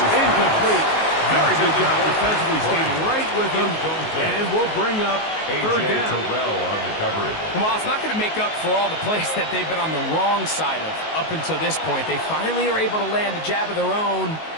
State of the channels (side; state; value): right; late; 19 ms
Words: incomplete. Very good job defensively, staying right with him, and we'll bring up 3rd down. Terrell on the coverage. Well, it's not going to make up for all the plays that they've been on the wrong side of up until this point. They finally are able to land a jab of their own,